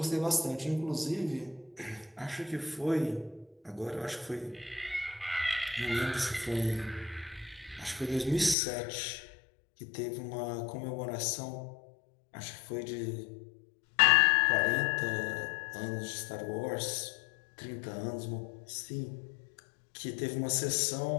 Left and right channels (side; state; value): right; drops out; at 8.6 s